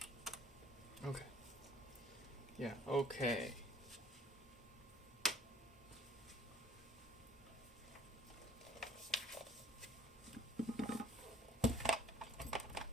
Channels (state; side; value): normal; both; correlation 0.56